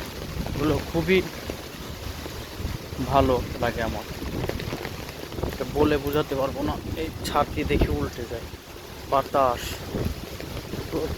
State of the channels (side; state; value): both; identical; correlation 1.00